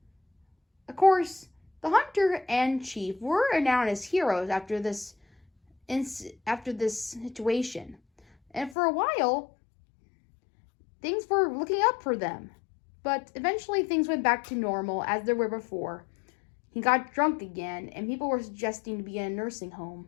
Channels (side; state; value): right; drops out; at 8.8 s